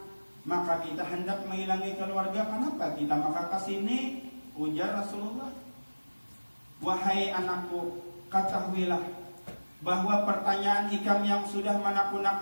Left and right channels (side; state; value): both; inverted; correlation -1.00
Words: kita hendak menghilangi keluarga, kenapa kita maka ke sini? Ujar Rasulullah, wahai anakku, ketahuilah bahwa pertanyaan Ikam yang sudah